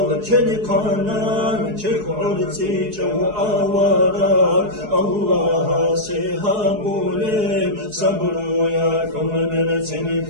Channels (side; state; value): left; late; 4.7 ms